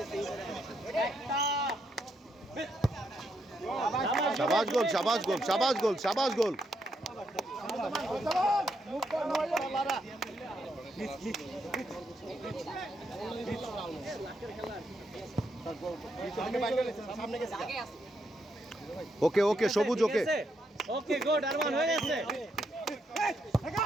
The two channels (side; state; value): both; normal; correlation 0.78